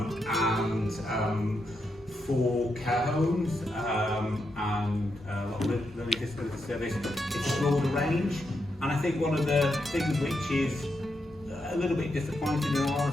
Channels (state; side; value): normal; both; correlation 0.83